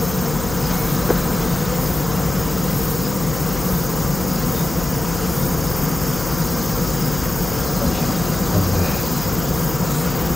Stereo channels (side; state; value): left; noise; hum, 8 dB below the sound